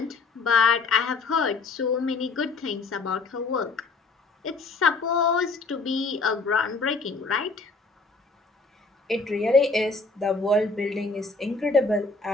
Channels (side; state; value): right; quieter; 3.9 dB